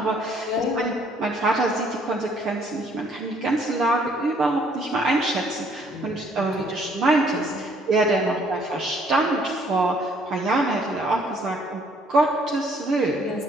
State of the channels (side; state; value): both; normal; correlation 0.64